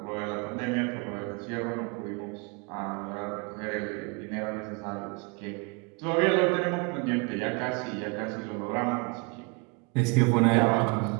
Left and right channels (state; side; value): quieter; left; 30.1 dB